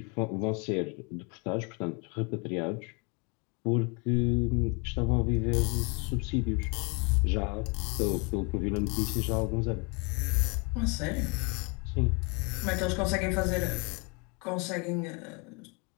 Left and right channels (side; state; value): right; quieter; 30.6 dB